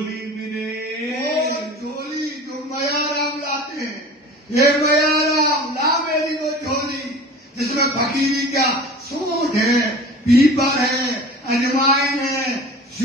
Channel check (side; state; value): both; normal; correlation 0.40